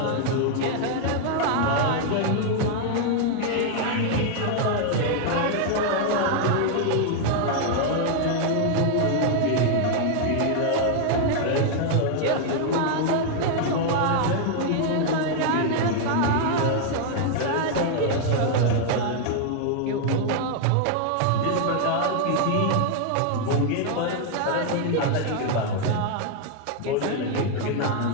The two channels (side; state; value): both; different; correlation 0.00